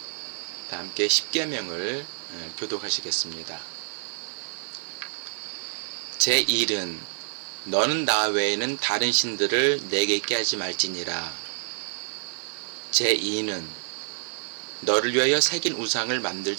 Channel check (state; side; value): silent; left; 60 dB below the other